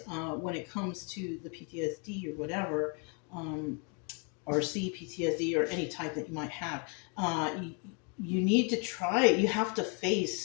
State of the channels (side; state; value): right; quieter; 36.4 dB